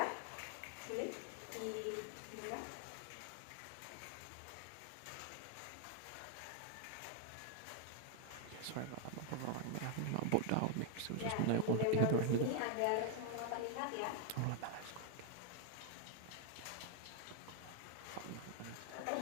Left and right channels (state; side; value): different; both; correlation 0.00